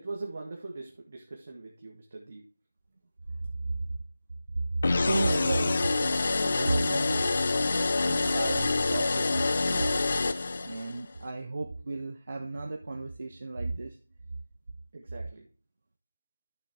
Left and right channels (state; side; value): inverted; both; correlation -0.95